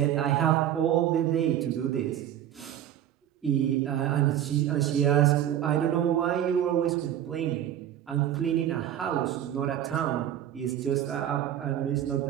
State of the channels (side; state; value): left; quieter; 11.0 dB